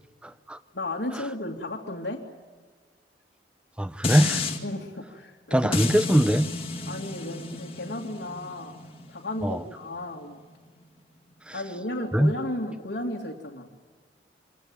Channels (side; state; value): both; normal; correlation 0.79